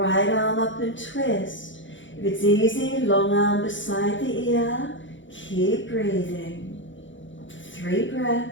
arm up and twist. If it's easy, long arm beside the ear. Keep breathing. 3 breaths.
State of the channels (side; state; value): right; late; 0.55 ms